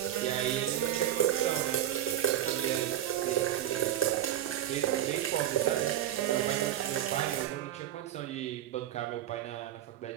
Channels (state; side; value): quieter; left; 12.1 dB